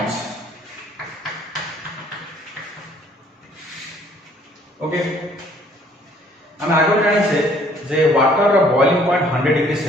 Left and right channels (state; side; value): normal; both; correlation 0.60